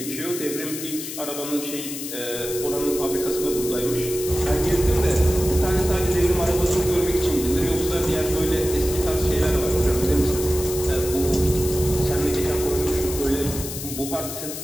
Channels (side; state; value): left; noise; hiss, 8 dB below the sound